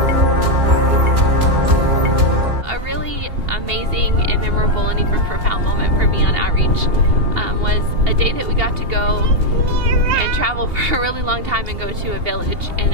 A really amazing and memorable and even profound moment for me on outreach was a day that we got to go and travel for a really long time and go to a village in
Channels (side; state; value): left; late; 2.8 ms